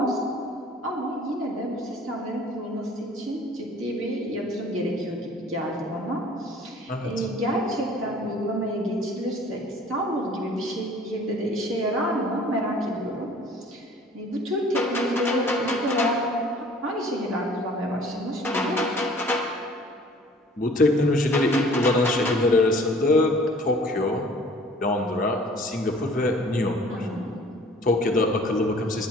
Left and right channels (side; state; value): both; normal; correlation 0.51